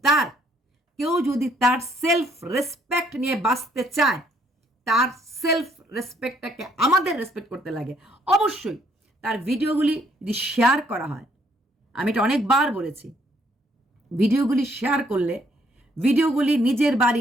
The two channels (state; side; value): normal; both; correlation 0.67